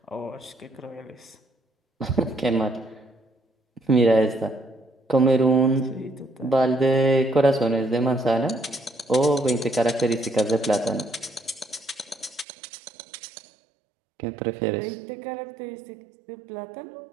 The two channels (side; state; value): left; drops out; at 12.5 s